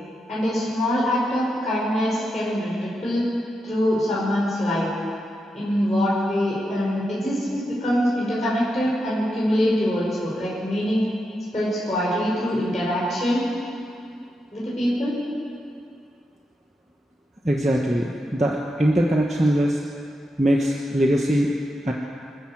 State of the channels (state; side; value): normal; both; correlation 0.86